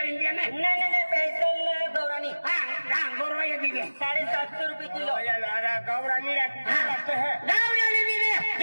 इंडिया में नहीं पेसल गौरानी। हाँ गौरवा ये दीजिए 750 रुपए किलो। अरे गौरानी लगते है गौरानी दीजिए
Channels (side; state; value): both; inverted; correlation -1.00